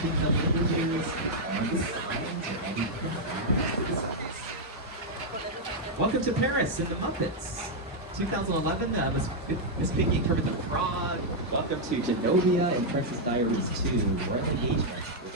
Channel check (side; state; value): both; normal; correlation -0.03